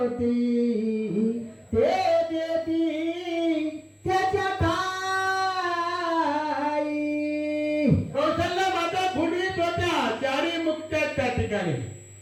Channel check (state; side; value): identical; both; correlation 1.00